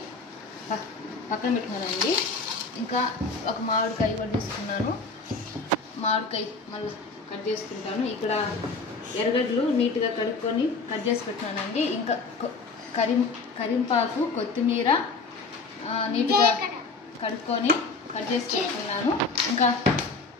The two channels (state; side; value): quieter; right; 4.0 dB